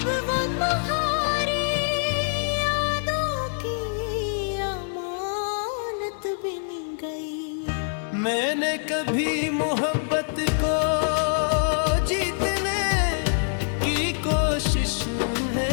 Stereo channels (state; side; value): silent; right; digital silence